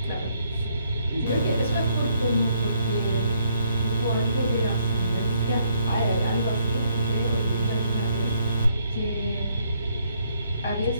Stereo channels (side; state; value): both; inverted; correlation -0.69